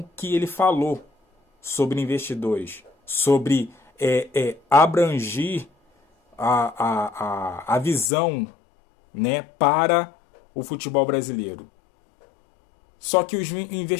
que ele falou sobre investidores, sobre abrangir a visão, né, para o futebol brasileiro. Só que os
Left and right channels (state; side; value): drops out; right; at 8.1 s